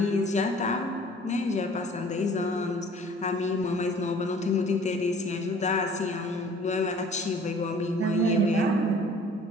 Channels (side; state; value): both; normal; correlation 0.51